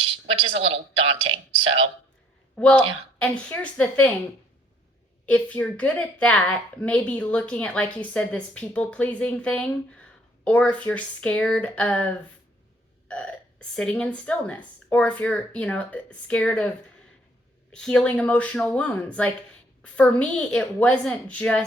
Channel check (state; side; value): normal; both; correlation 0.64